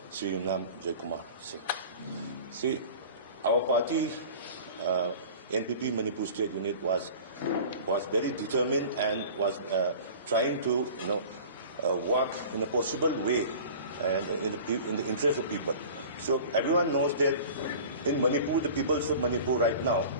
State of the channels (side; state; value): both; inverted; correlation -0.41